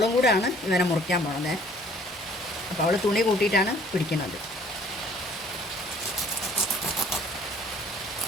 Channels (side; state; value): both; normal; correlation 0.56